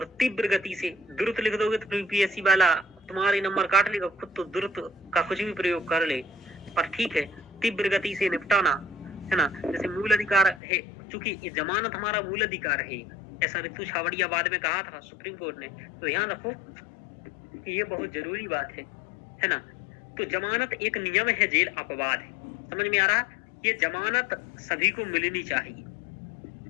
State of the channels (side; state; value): right; drops out; at 10.6 s